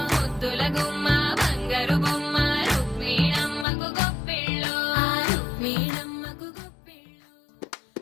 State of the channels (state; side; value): drops out; right; at 3.7 s